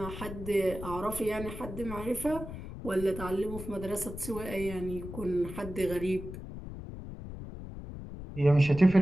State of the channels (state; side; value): noise; left; rumble, 10 dB below the sound